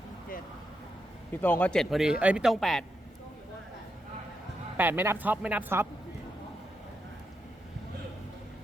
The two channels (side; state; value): both; normal; correlation 0.84